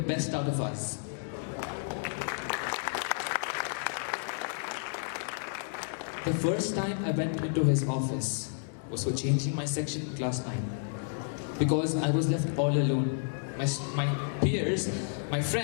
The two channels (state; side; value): silent; right; digital silence